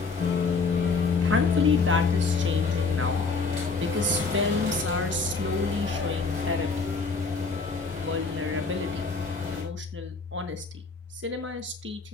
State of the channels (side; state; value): right; quieter; 4.4 dB